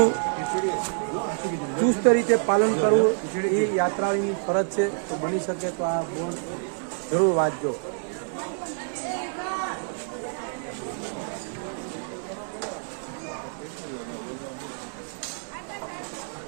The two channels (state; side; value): silent; left; digital silence